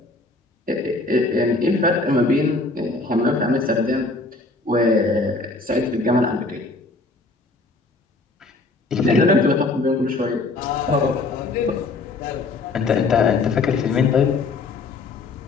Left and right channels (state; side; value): quieter; right; 3.4 dB